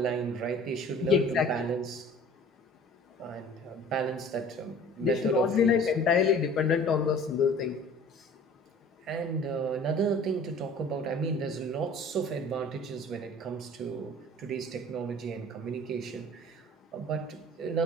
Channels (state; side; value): normal; both; correlation 0.47